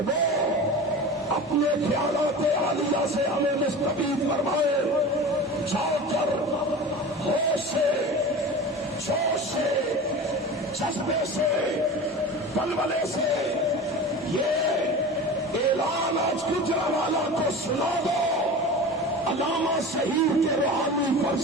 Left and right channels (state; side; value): normal; both; correlation 0.33